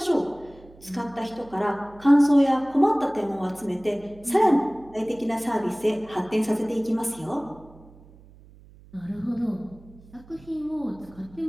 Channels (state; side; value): noise; right; hum, 23 dB below the sound